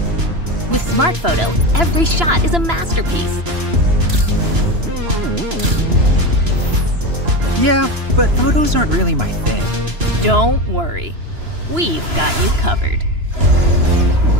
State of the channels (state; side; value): late; left; 2.9 ms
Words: With Smart Photo, every shot is a masterpiece. Yeah, but photos aren't really my thing. Don't worry, we've got you covered.